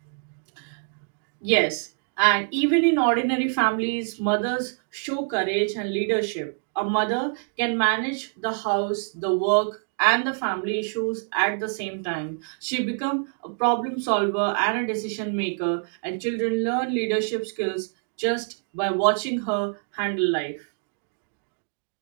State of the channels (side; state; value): left; silent; digital silence